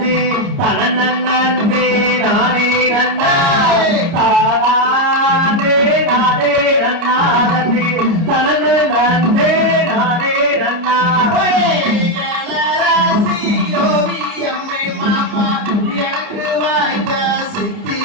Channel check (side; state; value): left; late; 30 ms